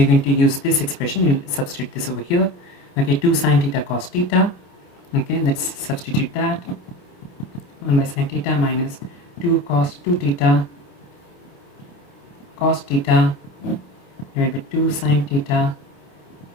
going to use this expression. You'll substitute this over here. Okay, 2 sine theta cos theta. Okay, let's substitute that. 1 by sine theta minus 2 cos 2 theta cos theta divided by 2 sine theta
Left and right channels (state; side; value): late; right; 28 ms